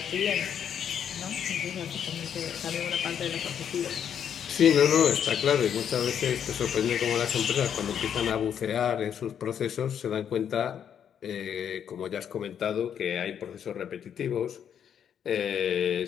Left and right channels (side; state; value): right; quieter; 8.6 dB